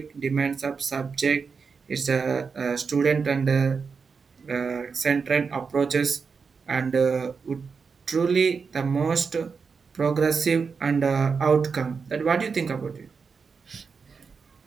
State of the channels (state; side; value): quieter; left; 5.4 dB